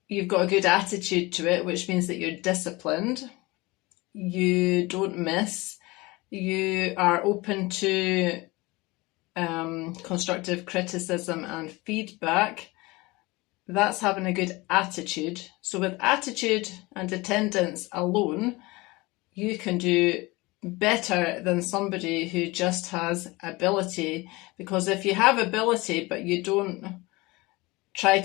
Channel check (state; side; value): quieter; right; 22.7 dB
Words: you've got a good attitude to it, which means that you're disciplined, you don't miss, you are open to constructive criticism and feedback, that's having a good attitude. So with attitude and attendance alone, you can do better than somebody who just has ability. Because if you have ability but you don't try